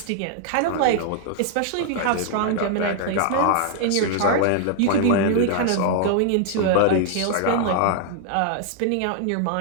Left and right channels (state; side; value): different; both; correlation 0.00